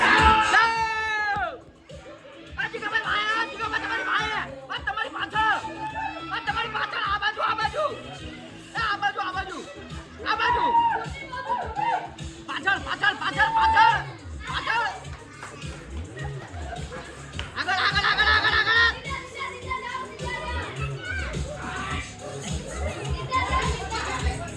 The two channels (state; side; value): identical; both; correlation 1.00